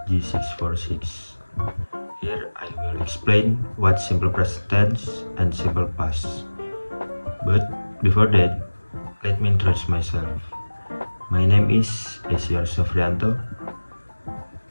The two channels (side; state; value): both; inverted; correlation -1.00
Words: G646. Here I will explain what simple present tense and simple past. But before that, let me introduce myself. My name is Esyar Sofrianto.